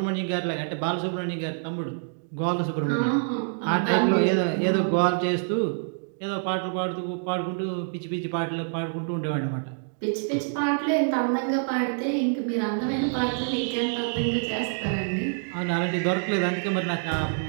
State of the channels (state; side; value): silent; left; digital silence